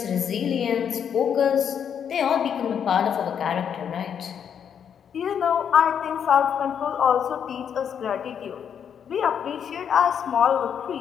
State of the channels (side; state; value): right; quieter; 8.1 dB